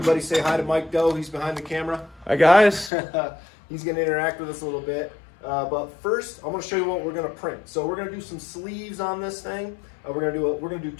say hi to Mike Doe. He's behind the camera. Hi guys. He's going to interact with us a little bit. But first, I'm going to show you what we're going to print. So we're going to do some sleeves on this thing. We're going to do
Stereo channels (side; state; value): right; drops out; at 2.9 s